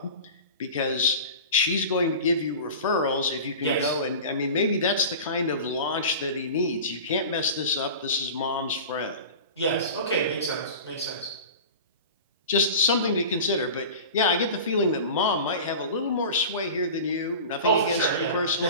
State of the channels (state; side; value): inverted; both; correlation -0.35